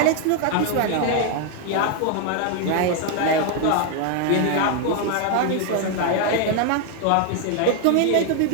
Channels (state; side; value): different; both; correlation 0.01